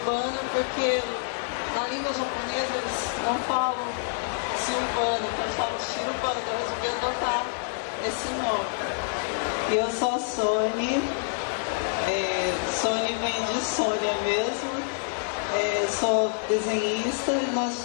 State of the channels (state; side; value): silent; right; digital silence